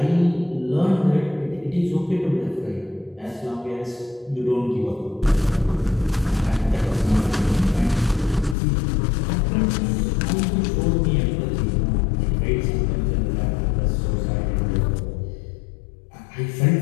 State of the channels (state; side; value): drops out; right; at 8.6 s